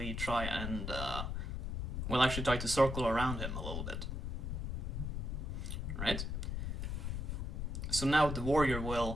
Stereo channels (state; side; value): noise; left; rumble, 2 dB below the sound